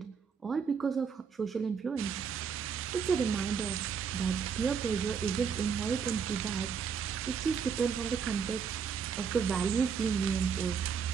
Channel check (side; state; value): left; quieter; 6.5 dB